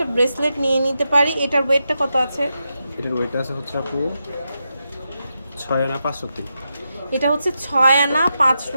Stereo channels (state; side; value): inverted; both; correlation -0.87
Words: ব্রেসলেট নিয়ে নিতে পারি। এটার ওয়েটটা কত আছে? এটার ওয়েট আছে হচ্ছে আপু 6 আনা 5 রতি। এটা হচ্ছে 6 আনা 5